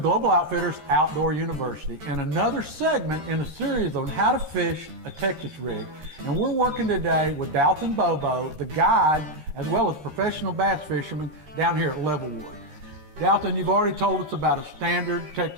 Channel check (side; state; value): left; late; 13 ms